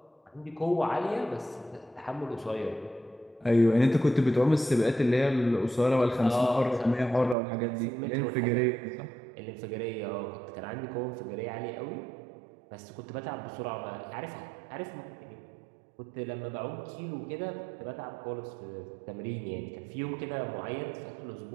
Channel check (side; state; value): left; drops out; at 7.4 s